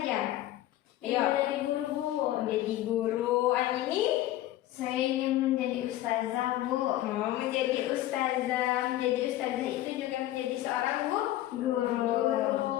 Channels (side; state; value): right; quieter; 14.6 dB